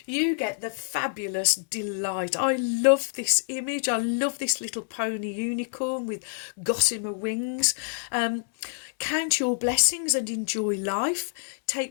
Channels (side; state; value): right; silent; 60 dB below the other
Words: you get the fabulous delight. I love this image. I love this little pony unicorn with gossamer wings. Count your blessings and enjoy life.